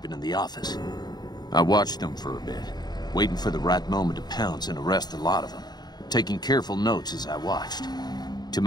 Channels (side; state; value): right; late; 0.20 ms